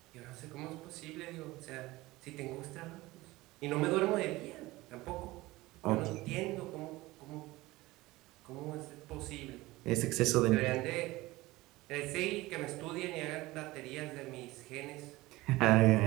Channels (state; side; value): quieter; left; 19.5 dB